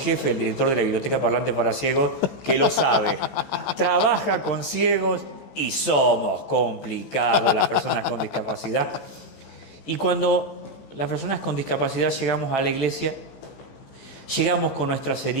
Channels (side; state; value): right; late; 15 ms